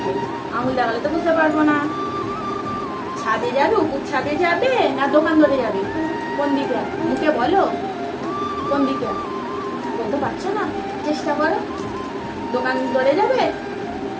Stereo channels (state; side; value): identical; both; correlation 1.00